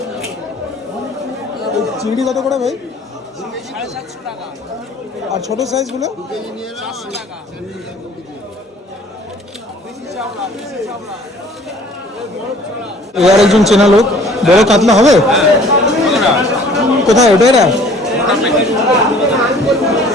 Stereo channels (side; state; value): both; normal; correlation 0.53